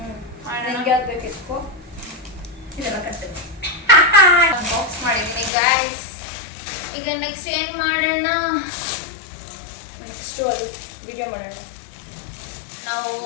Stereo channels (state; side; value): drops out; right; at 5.5 s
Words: ನನಗೆ ಯಾವ್ದು ಬೇಕು ಎತ್ಕೋ. ಇದೆಲ್ಲ ಕಟ್ತೇನೆ. ಬಾಕ್ಸ್ ಮಾಡಿದ್ದೀನಿ ಗೈಸ್. ಈಗ ನೆಕ್ಸ್ಟ್ ಏನು ಮಾಡೋಣ? ನೆಕ್ಸ್ಟು ಅದು ವಿಡಿಯೋ ಮಾಡೋಣ. ನಾವು